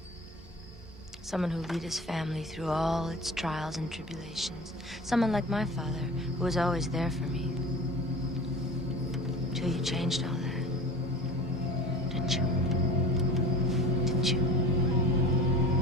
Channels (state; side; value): normal; both; correlation 0.38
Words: Someone who'll lead his family through all its trials and tribulations. Someone like my father, who was always there for me. Till you changed all that. Didn't you? Didn't you?